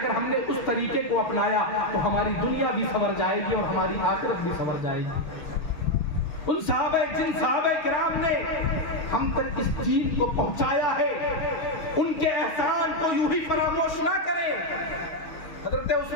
ہم نے اس طریقے کو اپنایا تو ہماری دنیا بھی سنور جائے گی اور ہماری آخرت بھی سنور جائے گی. ان جن صحابہ کرام نے ہم تک اس دین کو پہنچایا ہے, ان کے احسان کو یوں ہی فراموش نہ کریں. حضرت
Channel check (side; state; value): right; late; 6.3 ms